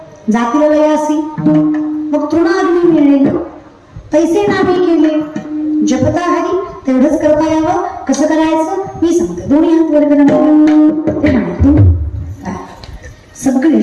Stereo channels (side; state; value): both; identical; correlation 1.00